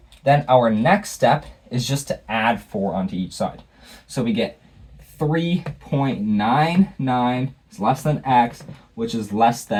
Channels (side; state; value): both; identical; correlation 1.00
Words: then our next step is just to add 4 onto each side. So we get 3.99 is less than x, which is less